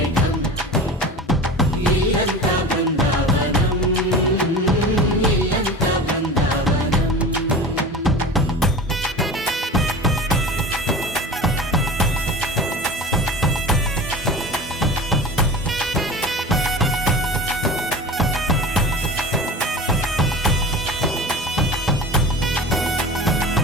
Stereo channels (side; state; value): both; normal; correlation 0.34